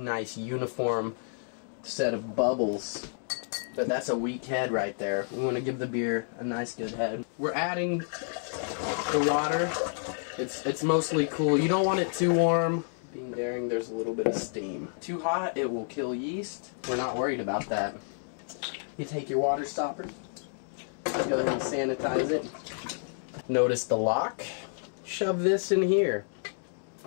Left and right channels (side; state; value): right; silent; digital silence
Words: uniform set of bubbles. But that's a weak head right there. We want to give the beer a nice good head. We're adding the water. It's mostly cool. You don't want it too warm. Being daring, there's a little bit of steam. Too hot, it will kill yeast. We're not worried about that. You take your water stopper, go ahead and sanitize it. Notice the lock. Shove this in here.